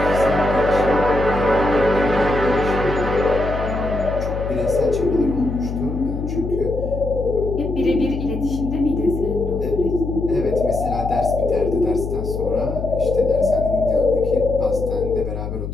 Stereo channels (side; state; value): left; noise; hum, 5 dB below the sound